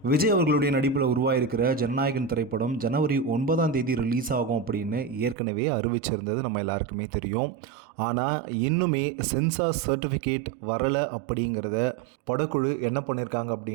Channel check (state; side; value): drops out; left; at 5.4 s